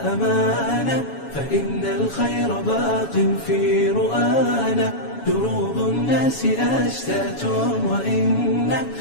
أمانا فإن الخير باق في رؤانا دروب الناس أشتات وإن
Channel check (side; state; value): right; late; 7.2 ms